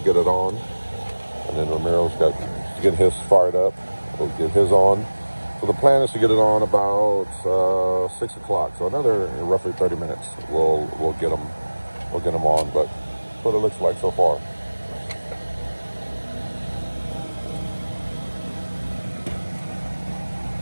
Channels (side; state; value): both; inverted; correlation -1.00